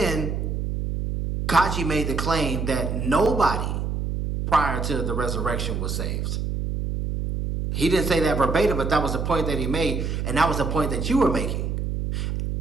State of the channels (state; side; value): noise; right; hum, 2 dB below the sound